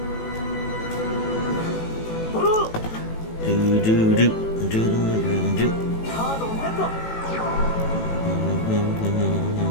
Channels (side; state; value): right; late; 18 ms